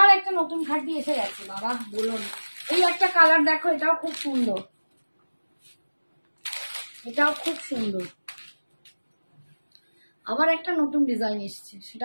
একটা নতুন খাটি এসে গেছে, বাবা বলো না। এই একটা কালার দেখো, এটাও খুব সুন্দর, এটাও খুব সুন্দর। আবার একটা নতুন ডিজাইন এসছে,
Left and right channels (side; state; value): both; inverted; correlation -1.00